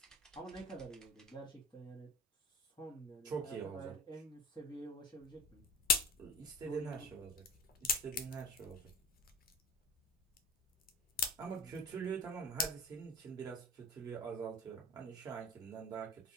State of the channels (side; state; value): both; normal; correlation 0.33